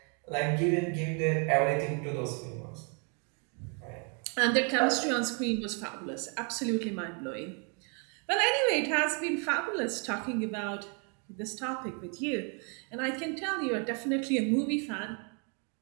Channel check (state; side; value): quieter; left; 37.7 dB